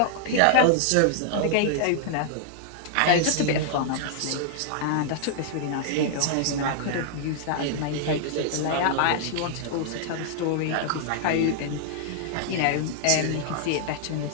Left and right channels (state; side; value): different; both; correlation -0.01